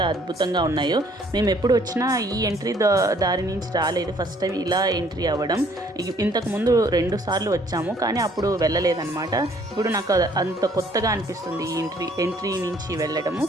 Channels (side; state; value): both; normal; correlation 0.61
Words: అద్భుతంగా ఉన్నాయో. మేము ఎప్పుడు వచ్చినా ఈ ఎంట్రీ దారి నుంచి రాలేదు, ఫస్ట్ టైం ఇలా ఎంట్రీ అవ్వడం. ఇంతకుముందు 2 సార్లు వచ్చాము కానీ అప్పుడు వెళ్ళలేదన్నమాట. ఇప్పుడు నాకు అంత కొత్తగా అనిపిస్తుంది ఈ ఎంట్రీ నుంచి వెళ్ళడము.